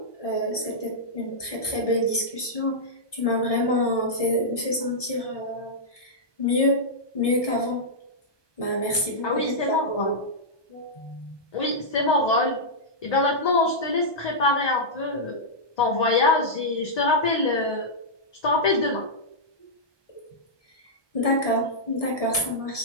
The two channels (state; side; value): late; right; 1.7 ms